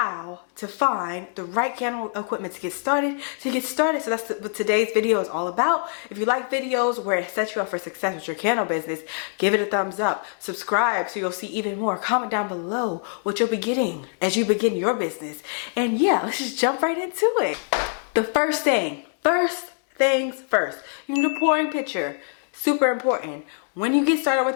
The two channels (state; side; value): silent; right; 62 dB below the other